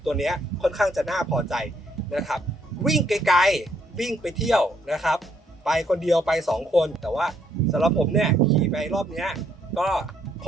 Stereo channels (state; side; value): normal; both; correlation 0.70